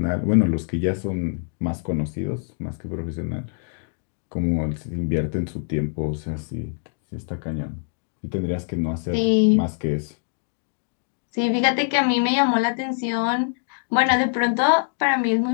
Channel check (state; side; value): silent; right; digital silence